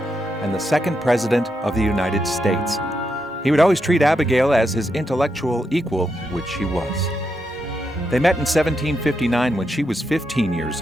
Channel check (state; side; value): normal; both; correlation 0.83